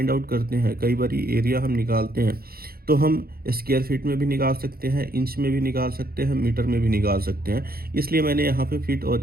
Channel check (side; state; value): left; late; 0.44 ms